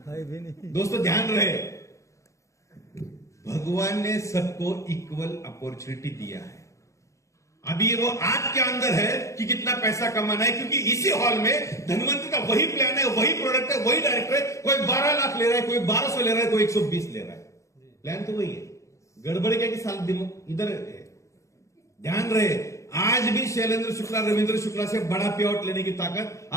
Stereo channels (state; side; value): late; right; 0.15 ms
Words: दोस्तों ध्यान रहे, भगवान ने सबको इक्वल अपॉर्चुनिटी दिया है। अभी वो आपके अंदर है कि कितना पैसा कमाना है, क्योंकि इसी हॉल में धनवंतरि का वही प्लान है, वही प्रोडक्ट है, वही डायरेक्टर है। कोई 12 लाख ले रहा है, कोई 1200 ले रहा है, कोई 120 ले रहा है। प्लान तो वही है। गड़बड़ क्या कि साल इधर है। ध्यान रहे, आज भी शैलेंद्र शुक्ला रविंद्र शुक्ला से बड़ा पे आउट लेने की ताकत